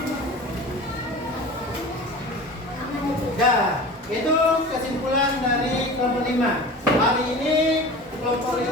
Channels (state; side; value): normal; both; correlation 0.36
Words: Itu kesimpulan dari kelompok 5. Hari ini kelompok